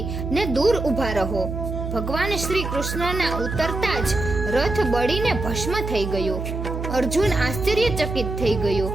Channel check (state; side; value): noise; right; hum, 5 dB below the sound